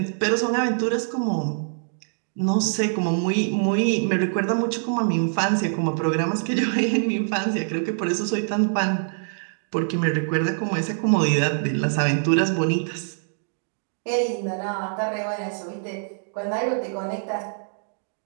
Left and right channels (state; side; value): silent; left; digital silence